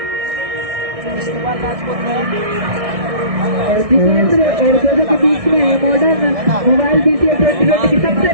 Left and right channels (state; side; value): late; left; 1.6 ms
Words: और जितेंद्र और जोजो के बीच में मॉडर्न मोबाइल BCL 2020 की सबसे